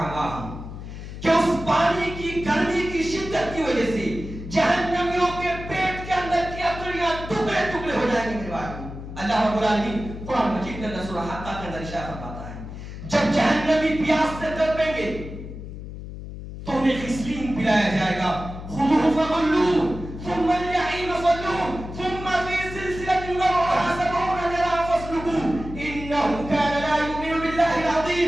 مَاءَهُمْ, کہ اس پانی کی گرمی کی شدت کی وجہ سے جہنمیوں کے پیٹ کے اندر کی اتریاں ٹکڑے ٹکڑے ہو جائیں گے میرے بھائی. اللہ رب العالمین قرآن مجید کے اندر سورہ حقہ کے اندر ارشاد فرماتا ہے جب جہنمی پیاس سے تڑپیں گے تو انہیں غسلین پلایا جائے گا. خُذُوهُ فَغُلُّوهُ ثم الجحيم صلوه ثم في سلسلة ذرعها 70 ذراعا فاسلكوه إنه كان لا يؤمن بالله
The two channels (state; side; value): noise; left; hum, 10 dB below the sound